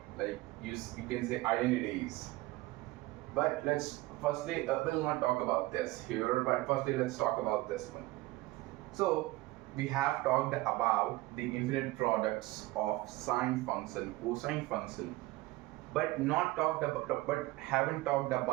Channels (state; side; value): quieter; left; 19.4 dB